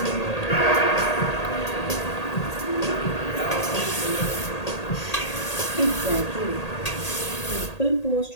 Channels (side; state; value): right; late; 1.8 ms